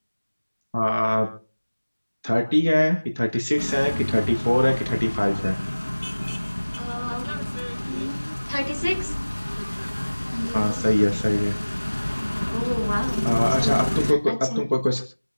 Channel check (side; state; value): both; inverted; correlation -1.00